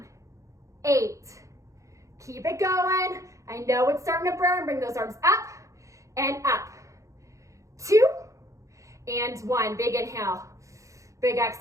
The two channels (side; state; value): left; late; 0.15 ms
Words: 8. Keep it going. I know it's starting to burn. Bring those arms up and up. 2 and 1. Big inhale. Big